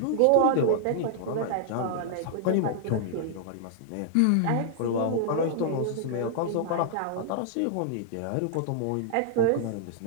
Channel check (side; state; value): both; different; correlation -0.01